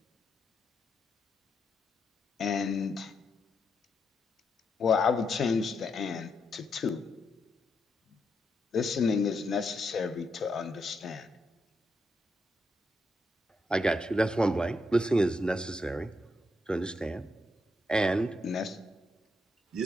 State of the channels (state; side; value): normal; both; correlation 0.81